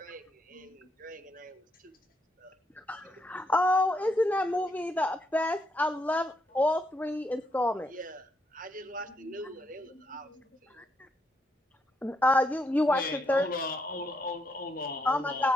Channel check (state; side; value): normal; both; correlation 0.77